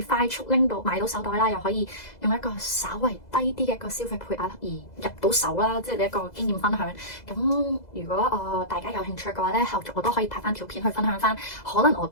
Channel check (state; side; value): late; right; 2.0 ms